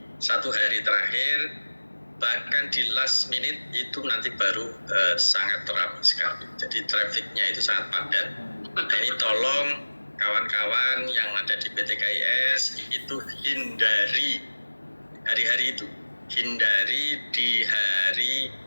1 hari terakhir, bahkan di last minute itu nanti baru sangat ramai sekali. Jadi trafficnya itu sangat padat. Nah ini tolong kawan-kawan yang ada di PTKIS itu hindari hari-hari itu. hindari di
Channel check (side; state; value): both; inverted; correlation -1.00